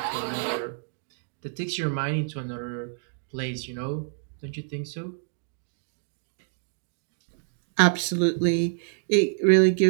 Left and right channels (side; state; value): left; silent; digital silence